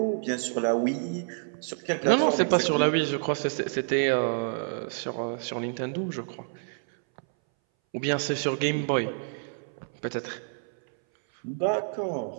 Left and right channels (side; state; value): left; silent; 59 dB below the other